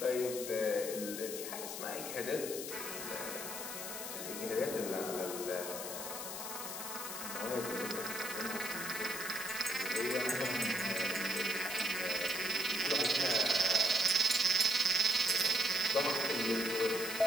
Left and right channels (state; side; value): noise; left; hiss, 6 dB below the sound